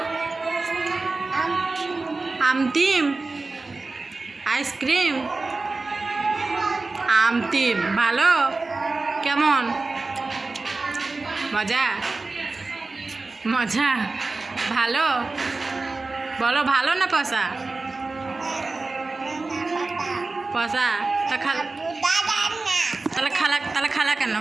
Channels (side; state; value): left; quieter; 3.6 dB